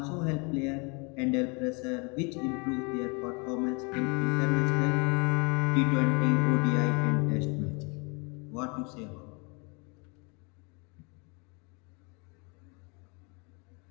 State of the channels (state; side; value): quieter; right; 32.0 dB